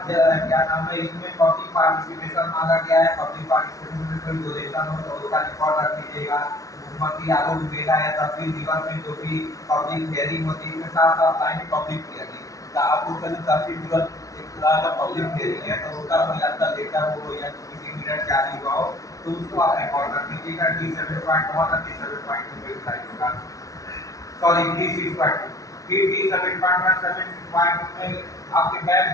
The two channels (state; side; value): late; right; 0.17 ms